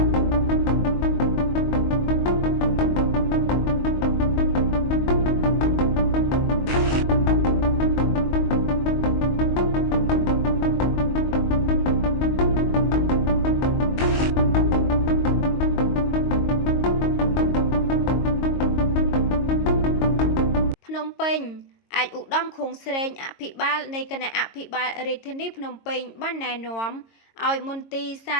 ភ្នំពេញអាចឧត្តមខួងស្រេងអភិបាលនៃគណៈអភិបាលរាជធានីភ្នំពេញបានណែនាំឲ្យមន្ទីរសា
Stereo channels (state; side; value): late; right; 22 ms